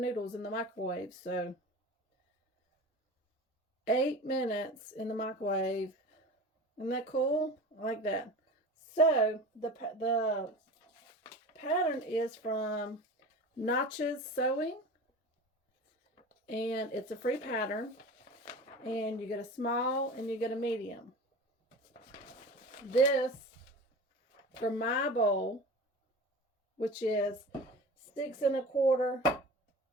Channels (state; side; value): normal; both; correlation 0.35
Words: in the microwave. So 8 minutes in the microwave. Isn't that cool? I like that. So the pattern is from Notches Sewing, and it's a free pattern, and you get a small and you get a medium. This for my bowl, which is 6 1/4